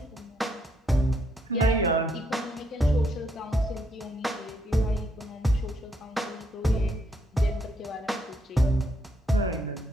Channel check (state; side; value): normal; both; correlation 0.74